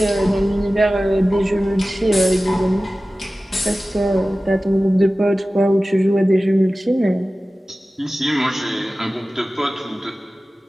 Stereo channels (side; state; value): both; normal; correlation 0.96